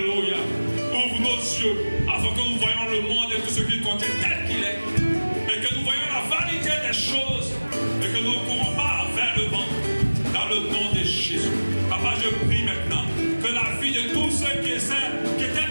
Ouvre nos yeux afin que nous voyions le monde et tout ce qu'il contient tel qu'il est. Et que nous voyions la vanité des choses. Et que nous ne courons pas vers le vent. Dans le nom de Jésus. Papa, je prie maintenant que la vie de tous ceux qui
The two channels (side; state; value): both; inverted; correlation -1.00